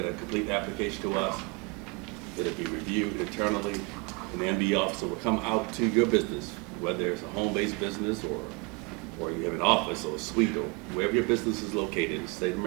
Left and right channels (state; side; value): quieter; left; 29.6 dB